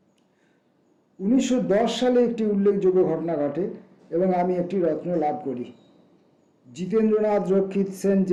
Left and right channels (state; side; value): identical; both; correlation 1.00